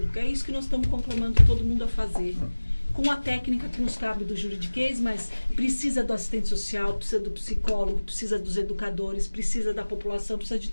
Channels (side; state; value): both; inverted; correlation -1.00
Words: É isso que nós estamos conclamando todo mundo a fazer. Com a técnica que nos cabe do juridiquês, mas precisa do assistente social, precisa do psicólogo, precisa dos educadores, precisa da população, precisa de